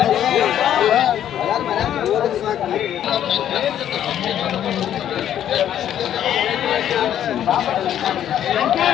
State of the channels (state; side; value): quieter; right; 10.6 dB